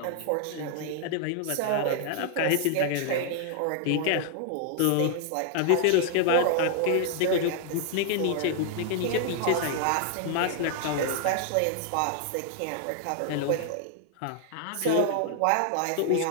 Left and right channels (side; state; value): both; different; correlation 0.00